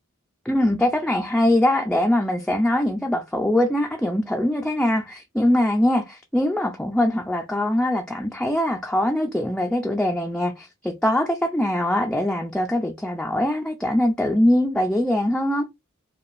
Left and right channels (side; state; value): both; normal; correlation 0.88